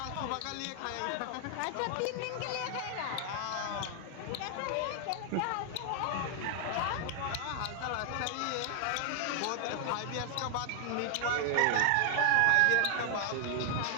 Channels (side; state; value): both; different; correlation 0.00